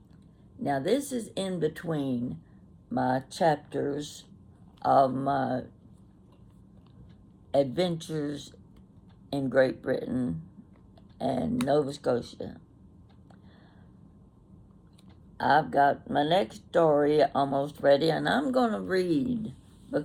Now this is in between my chapters of my adventures in Great Britain and Nova Scotia. I've got my next story almost ready, and I'm going to read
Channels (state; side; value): identical; both; correlation 1.00